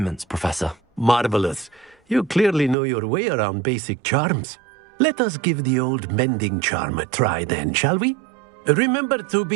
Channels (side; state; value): left; drops out; at 2.8 s